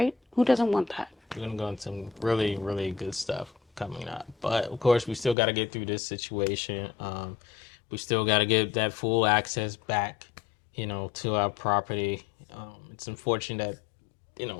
Who doesn't want that? We're going to go into some really, really good stuff coming up. But of course, we still got to get through this situation. We still got to get that full access back, to our property. It's unfortunate that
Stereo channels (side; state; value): right; drops out; at 5.4 s